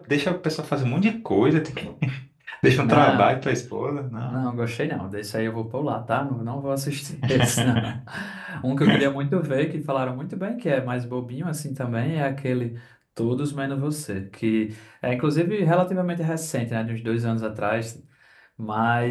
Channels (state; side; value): identical; both; correlation 1.00